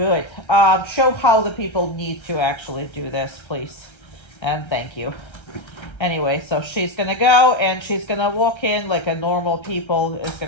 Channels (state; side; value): late; right; 1.3 ms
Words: Show how the people need to actually do this, please. And thank you. Anyway, so she's going to go and she's going to walk in like a normal people is